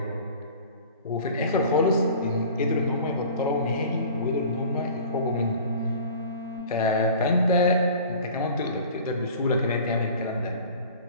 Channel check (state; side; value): inverted; both; correlation -0.43